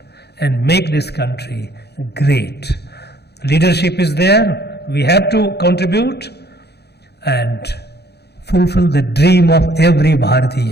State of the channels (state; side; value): late; right; 0.48 ms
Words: and make this country great. Leadership is there, we have to contribute and fulfill the dream of every